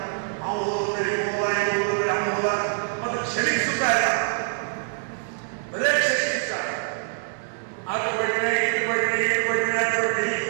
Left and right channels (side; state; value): left; silent; digital silence